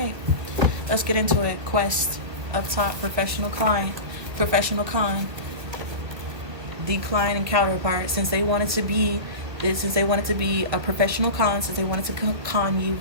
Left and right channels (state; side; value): late; left; 1.7 ms